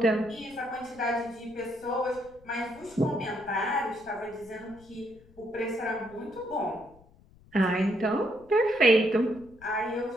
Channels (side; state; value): left; noise; rumble, 25 dB below the sound